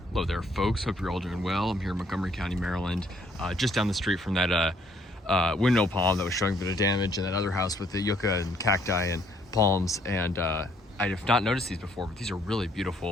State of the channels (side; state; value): both; normal; correlation 0.66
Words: Hello there, folks. Hope you're all doing well. I'm here in Montgomery County, Maryland, just down the street from that windmill palm that was showing a bit of damage, and that other house with the yucca and cacti and palms. And I have not noticed these before, but these are really